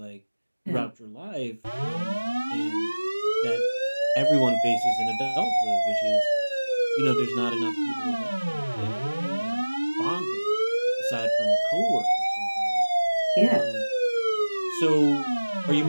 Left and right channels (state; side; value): inverted; both; correlation -1.00